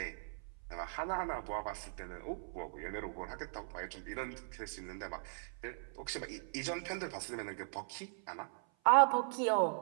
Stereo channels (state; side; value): silent; left; 52 dB below the other